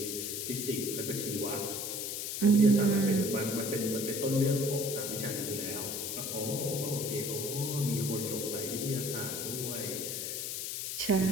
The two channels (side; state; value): left; noise; hiss, 3 dB below the sound